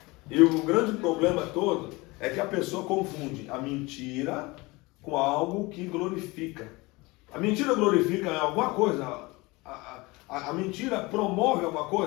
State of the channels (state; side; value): quieter; right; 23.4 dB